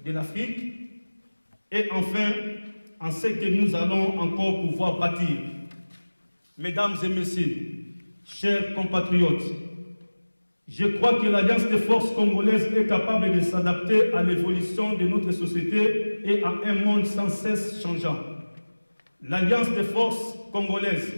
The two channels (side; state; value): both; inverted; correlation -1.00